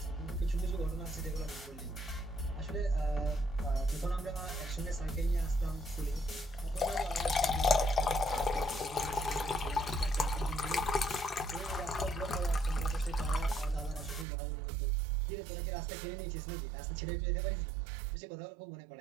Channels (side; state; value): left; drops out; at 14.2 s